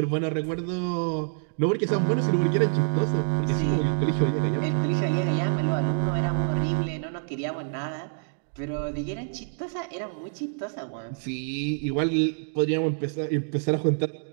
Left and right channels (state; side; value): silent; left; digital silence